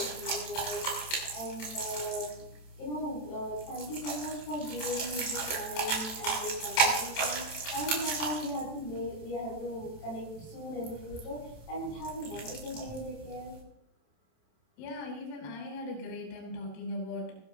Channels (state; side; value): late; right; 27 ms